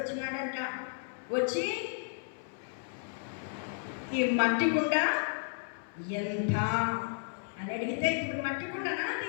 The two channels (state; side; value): silent; right; 56 dB below the other